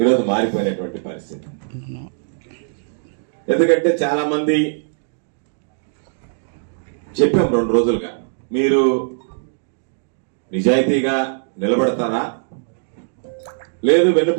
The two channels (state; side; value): silent; left; digital silence